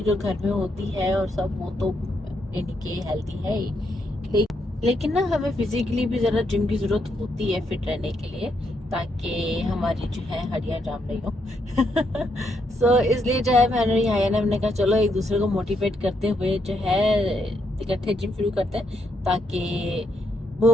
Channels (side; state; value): both; normal; correlation 0.77